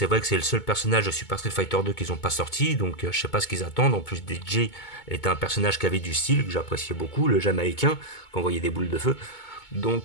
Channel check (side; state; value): right; late; 2.2 ms